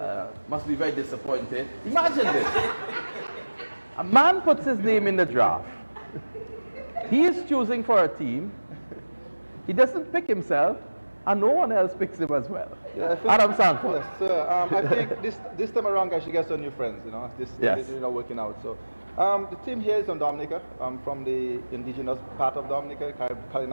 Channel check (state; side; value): inverted; both; correlation -1.00